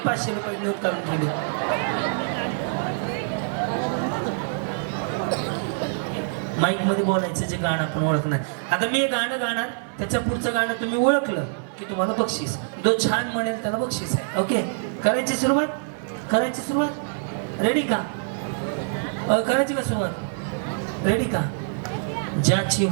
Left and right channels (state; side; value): silent; left; 62 dB below the other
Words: 500 रुपये नोट काढून ठेवली. माईक मध्ये बोलायचं जे गाणं आपण ओळखणार. आता मी हे गाणं गाणार, त्याच्या पुढचं गाणं तुम्ही ओळखलं की तुम्हाला बक्षीस. जो छान म्हणेल त्याला बक्षीस आहे. ओके, करायची सुरुवात. रेडी का? करायची का सुरुवात? रेडी का? ज्याची